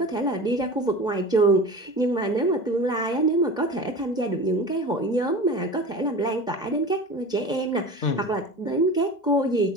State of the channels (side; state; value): right; late; 2.0 ms